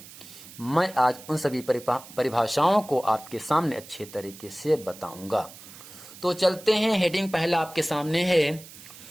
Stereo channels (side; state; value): right; noise; hiss, 18 dB below the sound